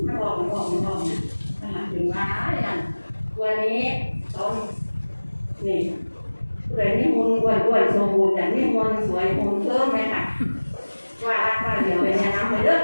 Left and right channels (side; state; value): both; inverted; correlation -1.00